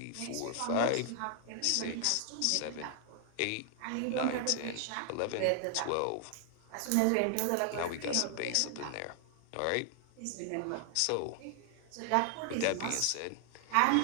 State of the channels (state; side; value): different; both; correlation 0.00